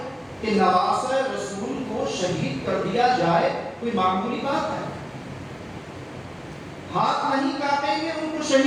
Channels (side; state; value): both; identical; correlation 1.00